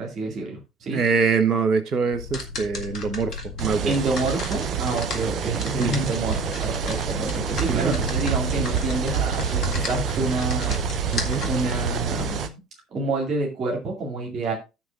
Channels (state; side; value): quieter; left; 4.0 dB